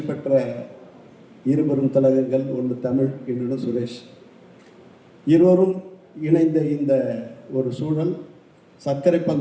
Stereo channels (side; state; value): both; identical; correlation 1.00